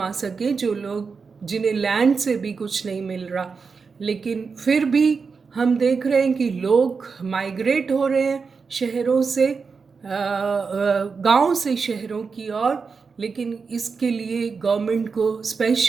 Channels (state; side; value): quieter; left; 5.1 dB